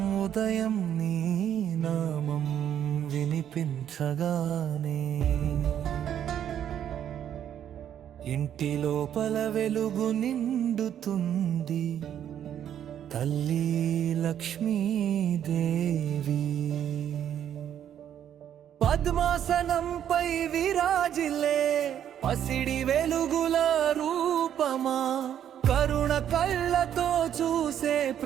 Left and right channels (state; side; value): quieter; left; 9.9 dB